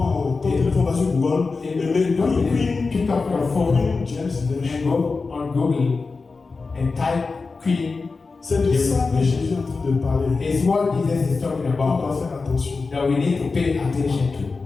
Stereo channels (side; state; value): right; quieter; 4.2 dB